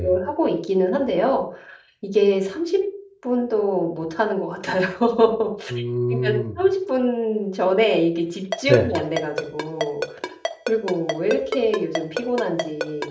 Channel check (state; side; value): identical; both; correlation 1.00